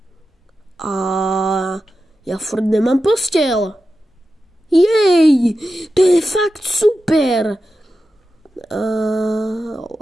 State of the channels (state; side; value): normal; both; correlation 0.91